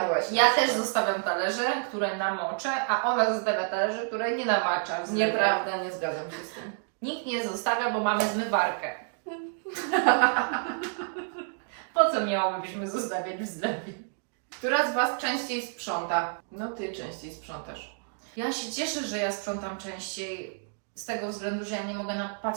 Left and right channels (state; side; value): silent; left; 56 dB below the other